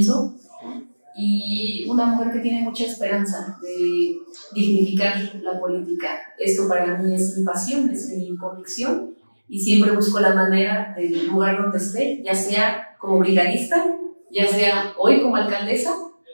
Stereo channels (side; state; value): both; inverted; correlation -1.00